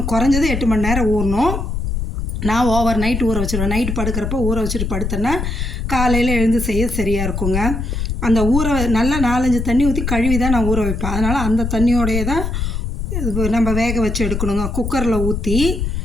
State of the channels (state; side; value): noise; left; rumble, 3 dB below the sound